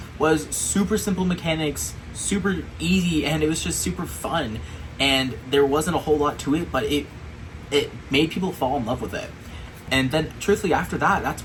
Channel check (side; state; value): both; identical; correlation 1.00